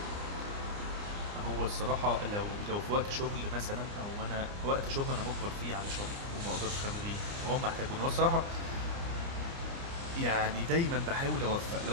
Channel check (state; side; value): late; left; 29 ms